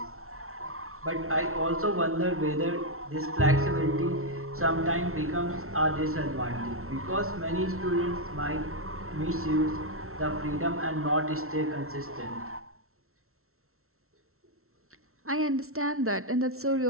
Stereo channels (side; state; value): left; late; 0.62 ms